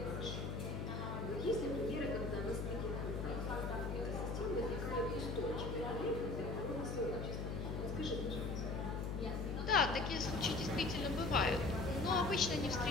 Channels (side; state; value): left; noise; hum, 3 dB below the sound